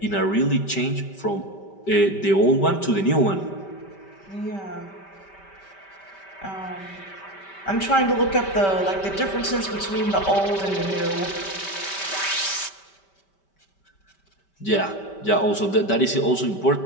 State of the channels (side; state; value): right; late; 5.1 ms